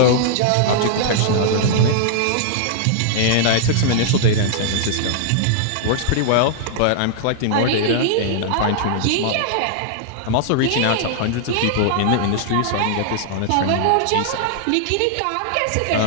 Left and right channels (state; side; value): different; both; correlation -0.01